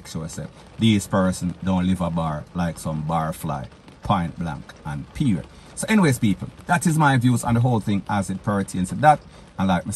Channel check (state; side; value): identical; both; correlation 1.00